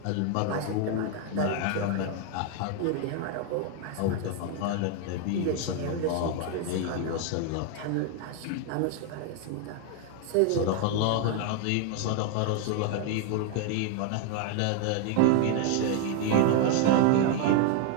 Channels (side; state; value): both; different; correlation 0.01